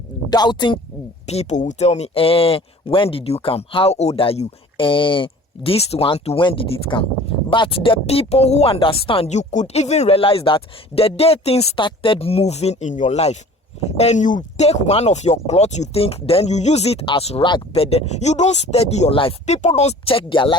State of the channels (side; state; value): both; normal; correlation 0.46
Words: doubting people will tell me, when did you come? How old are you? This one to when did it come? But the people who understand, you could even realize that the day things started moving in your life, and you take one of your clothes, you think, then you use it as rag, but then you don't study your life. People don't check their